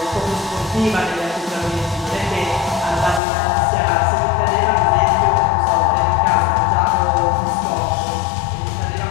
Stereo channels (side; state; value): right; drops out; at 3.2 s